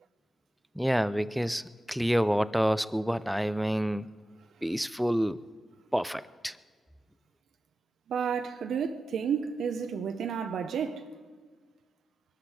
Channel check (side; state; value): both; normal; correlation 0.93